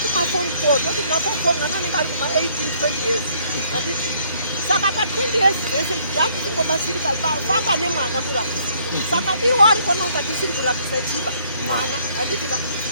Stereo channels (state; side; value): inverted; both; correlation -0.65